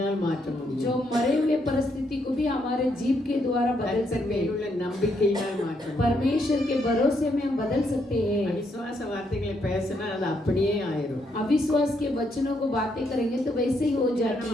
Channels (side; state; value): both; normal; correlation 0.76